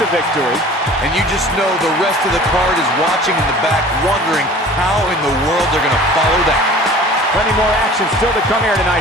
victory. And you just know the rest of the card is watching in the back, wondering how in the world they're going to follow that. Plenty more action still to come here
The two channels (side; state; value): both; normal; correlation 0.44